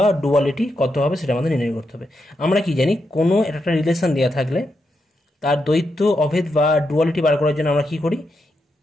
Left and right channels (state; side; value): normal; both; correlation 0.84